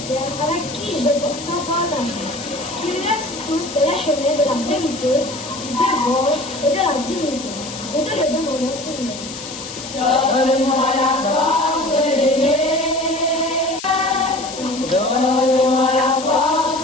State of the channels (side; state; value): left; noise; hiss, 11 dB below the sound